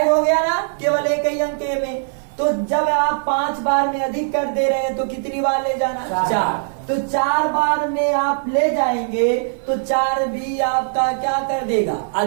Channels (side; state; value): left; silent; 56 dB below the other